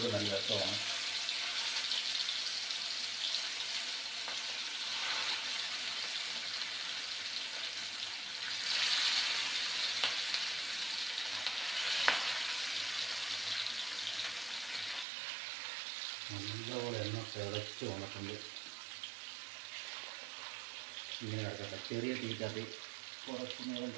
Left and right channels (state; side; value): drops out; left; at 15.1 s